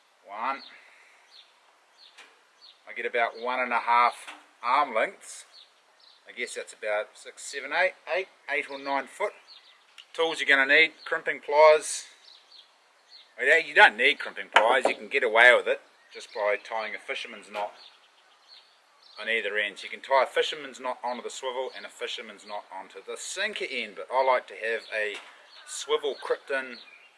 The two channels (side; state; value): both; identical; correlation 1.00